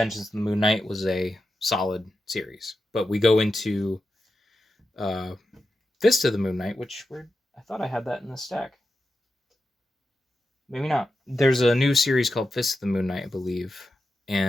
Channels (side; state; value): both; normal; correlation 0.90